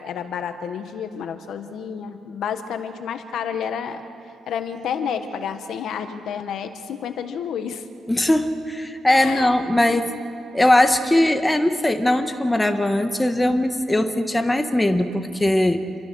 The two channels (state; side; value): normal; both; correlation 0.94